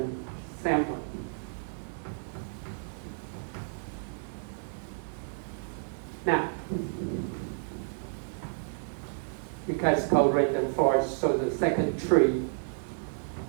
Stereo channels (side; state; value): left; silent; digital silence